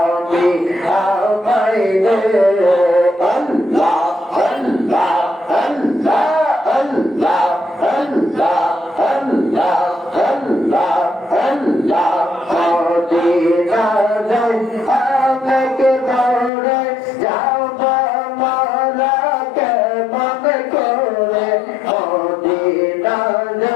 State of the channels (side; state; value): right; drops out; at 16.5 s